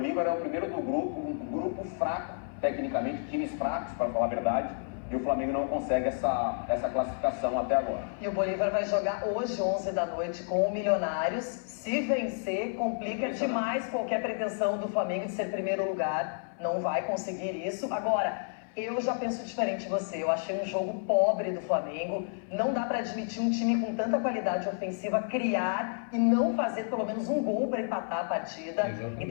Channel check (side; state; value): right; silent; 57 dB below the other